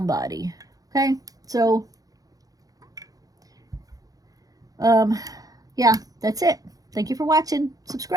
body. Okay? So, yeah, that's it. Thank you for watching.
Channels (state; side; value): late; left; 0.17 ms